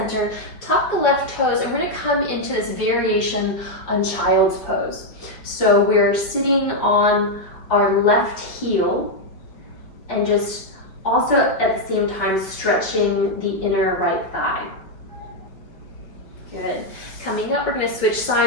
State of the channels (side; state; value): right; late; 5.1 ms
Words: tuck the left toes, and we're gonna come into this variation on child's pose. So we're sitting on our left heel and just also at the same time stretching the inner right thigh. Good. Coming up, we're going to switch